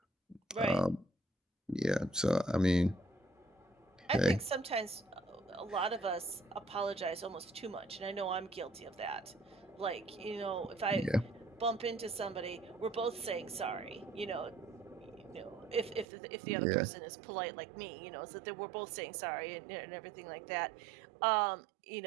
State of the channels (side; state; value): left; drops out; at 16.1 s